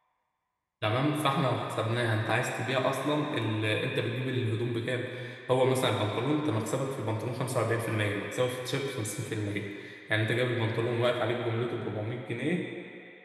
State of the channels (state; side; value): identical; both; correlation 1.00